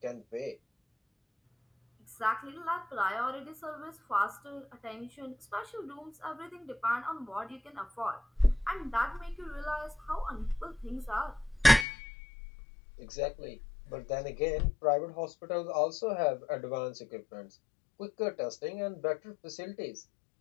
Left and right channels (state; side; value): drops out; right; at 11.9 s